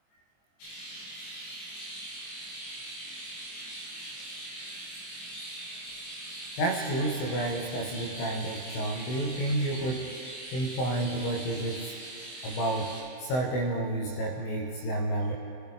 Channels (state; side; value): late; right; 24 ms